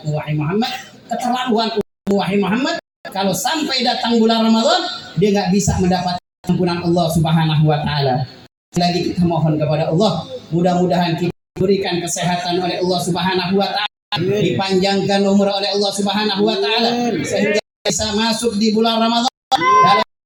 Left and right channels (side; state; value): both; identical; correlation 1.00